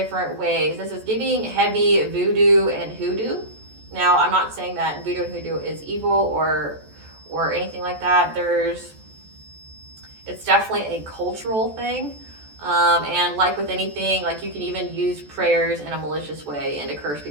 ways. This is giving heavy voodoo and hoodoo. Now, I'm not saying that voodoo and hoodoo is evil or anything like that. It's definitely a cultural thing. And like with anything, like you can even use prayers in a malicious way and to curse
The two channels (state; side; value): late; left; 14 ms